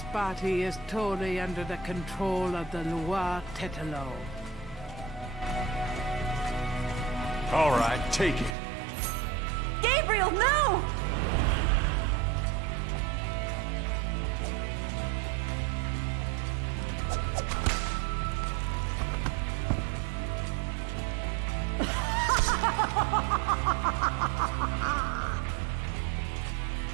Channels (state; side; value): drops out; left; at 8.6 s